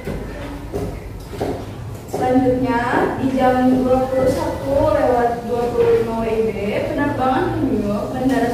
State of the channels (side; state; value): both; identical; correlation 1.00